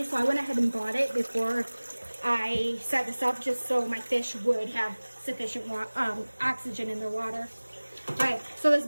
so I went ahead and bought it before I set this up, just so my fish would have sufficient oxygen in their water. All right, so this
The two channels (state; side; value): inverted; both; correlation -1.00